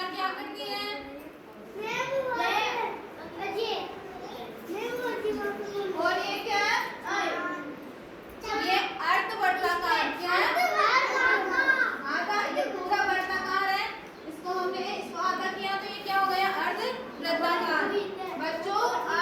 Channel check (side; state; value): both; identical; correlation 1.00